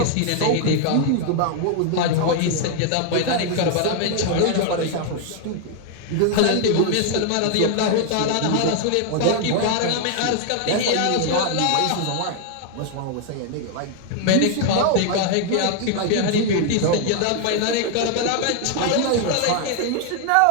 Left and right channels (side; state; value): both; different; correlation 0.00